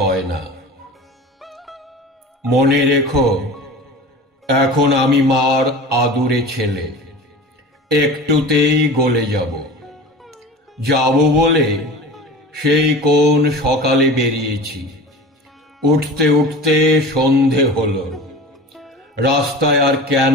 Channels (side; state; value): both; normal; correlation 0.36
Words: না। মনে রেখো, এখন আমি মার আদুরে ছেলে, একটুতেই গলে যাব। যাব বলে সেই কোন সকালে বেরিয়েছি, উঠতে উঠতে সন্ধে হলো। রাস্তায় আর